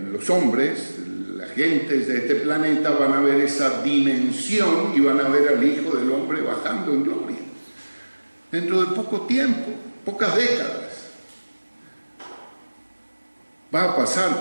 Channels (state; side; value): inverted; both; correlation -1.00